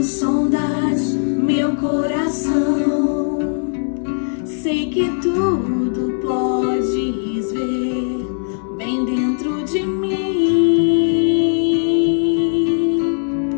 sondas meu coração, sei que tudo podes ver bem dentro de mim.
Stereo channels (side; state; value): right; silent; digital silence